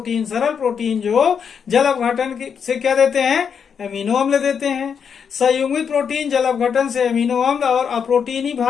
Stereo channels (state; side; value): quieter; right; 7.0 dB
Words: सरल प्रोटीन जो जल अपघटन से क्या देते हैं? एमिनो अम्ल देते हैं। संयुग्मित प्रोटीन जल अपघटन से एमिनो अम्ल और अप्रोटीनी